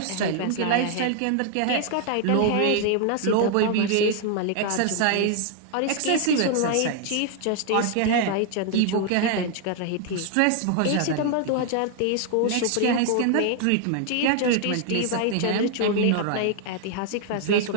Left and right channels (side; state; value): both; different; correlation 0.00